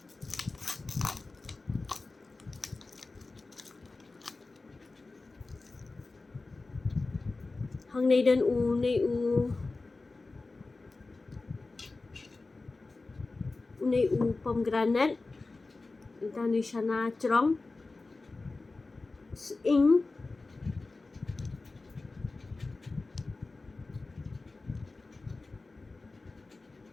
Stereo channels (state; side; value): quieter; right; 3.5 dB